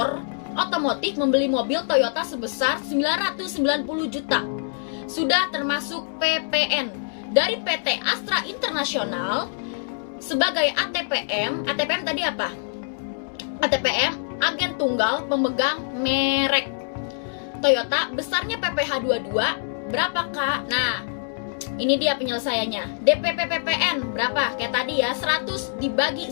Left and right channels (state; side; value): silent; right; digital silence